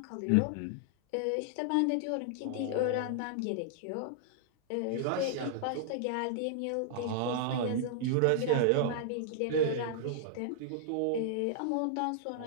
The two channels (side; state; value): both; different; correlation -0.01